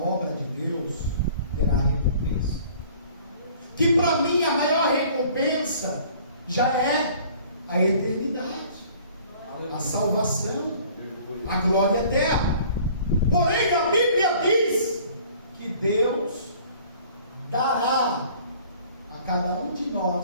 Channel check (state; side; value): inverted; both; correlation -0.52